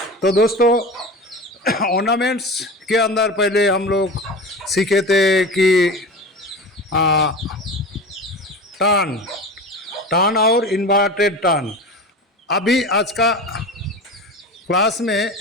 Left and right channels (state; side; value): normal; both; correlation 0.31